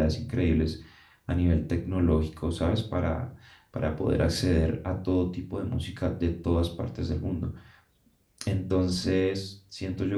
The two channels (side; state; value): both; identical; correlation 1.00